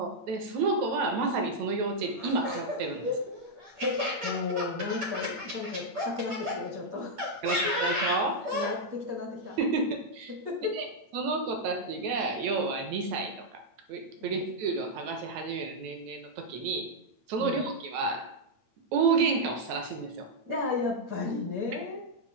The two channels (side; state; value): left; late; 8.8 ms